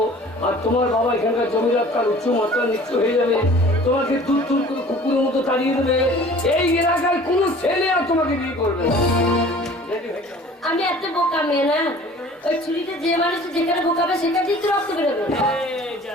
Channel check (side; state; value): both; normal; correlation 0.47